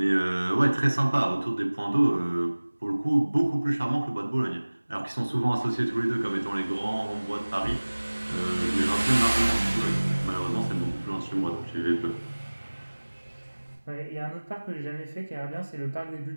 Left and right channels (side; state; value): both; inverted; correlation -1.00